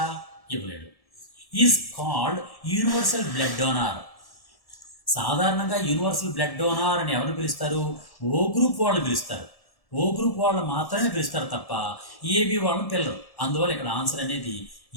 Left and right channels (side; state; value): right; late; 1.1 ms